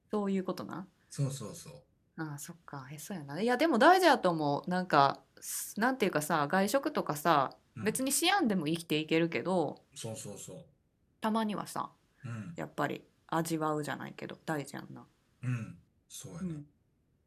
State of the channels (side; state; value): both; identical; correlation 1.00